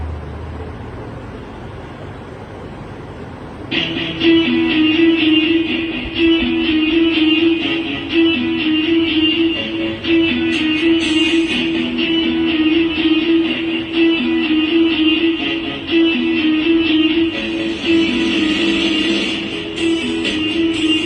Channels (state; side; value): identical; both; correlation 1.00